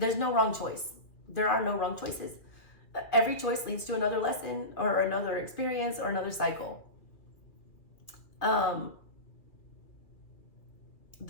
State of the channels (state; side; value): late; right; 2.3 ms